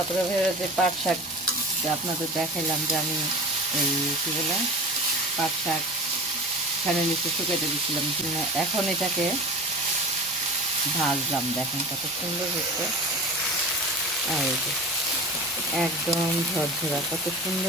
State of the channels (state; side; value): normal; both; correlation 0.35